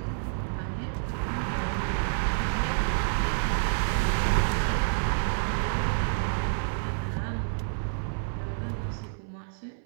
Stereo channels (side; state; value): left; silent; 59 dB below the other